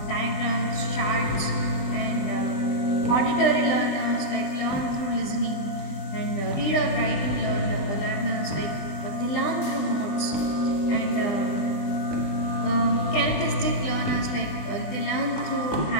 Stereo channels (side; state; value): right; late; 20 ms